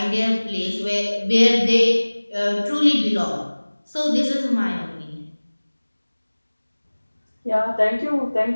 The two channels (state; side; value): inverted; both; correlation -1.00